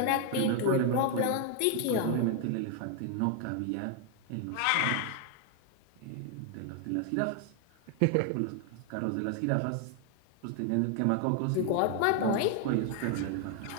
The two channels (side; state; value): both; different; correlation 0.00